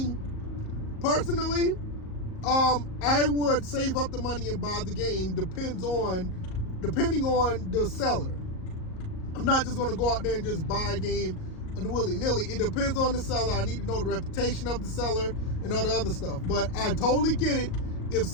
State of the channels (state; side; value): late; right; 38 ms